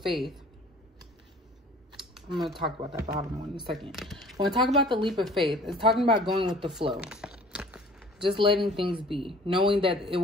I'm going to talk about that bottom one in a second. When I talk about the leap of faith, it's talking about going with the flow. Just letting things be. Knowing that it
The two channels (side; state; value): both; normal; correlation 0.49